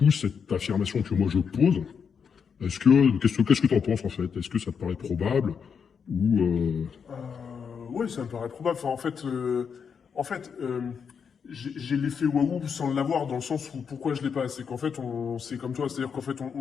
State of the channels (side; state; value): right; quieter; 6.6 dB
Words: cette affirmation que moi je pose, qu'est-ce que tu en penses en fait? Est-ce que ça te paraît probable ou Oui, ça me paraît probable. Enfin, en fait j'ai l'effet waouh sans l'avoir, dans le sens où pourquoi je l'ai pas. C'est qu'en fait, c'est comme toi, c'est-à-dire qu'en fait,